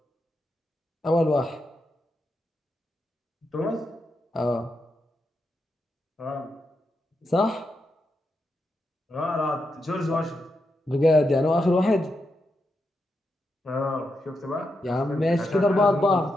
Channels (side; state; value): both; normal; correlation 0.85